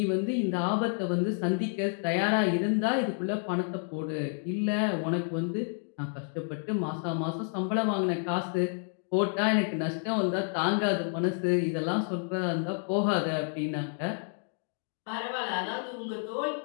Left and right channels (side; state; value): right; silent; 58 dB below the other